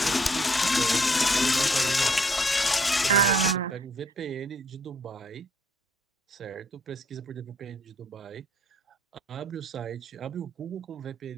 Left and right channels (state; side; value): normal; both; correlation 0.65